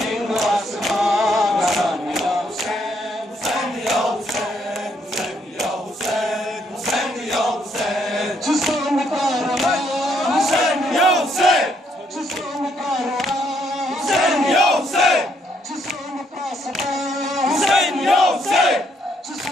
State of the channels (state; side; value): normal; both; correlation 0.72